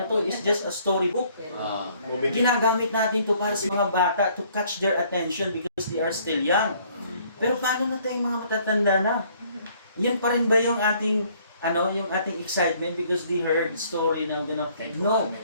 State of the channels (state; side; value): inverted; both; correlation -0.61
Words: to. It's just a storybook. Ginagamit natin to para sa mga bata to catch their attention because they are still young. Pero paano na tayong mga matatanda na? Yan pa rin ba yung ating yung ating excitement because they heard story na gano'n? No,